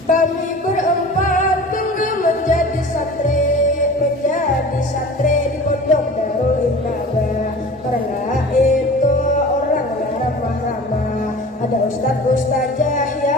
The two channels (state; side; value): normal; both; correlation 0.40